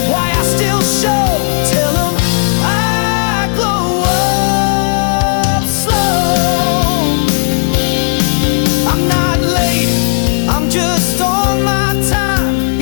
why I still show, tell them I'm just on my time.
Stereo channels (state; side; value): silent; right; digital silence